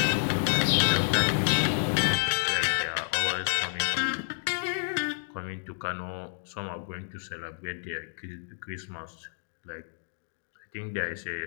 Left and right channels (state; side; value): silent; right; digital silence